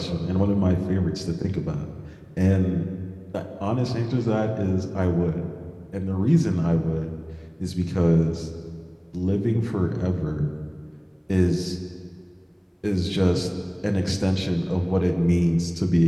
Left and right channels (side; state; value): both; identical; correlation 1.00